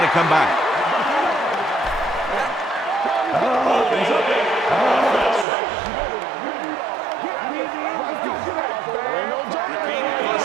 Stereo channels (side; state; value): left; drops out; at 5.5 s